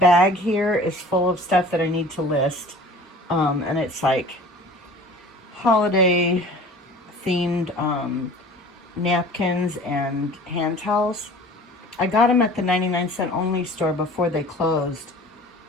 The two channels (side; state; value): both; normal; correlation 0.45